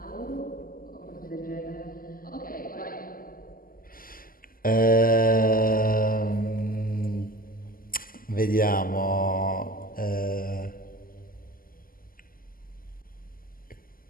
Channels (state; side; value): late; right; 0.42 ms